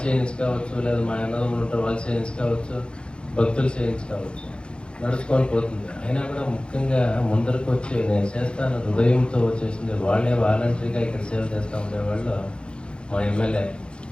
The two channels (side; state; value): right; late; 0.054 ms